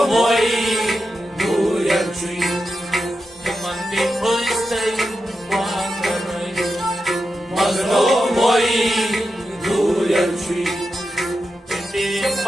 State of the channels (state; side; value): normal; both; correlation 0.89